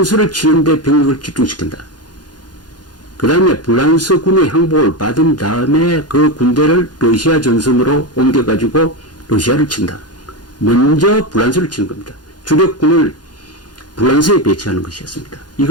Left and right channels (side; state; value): right; late; 0.70 ms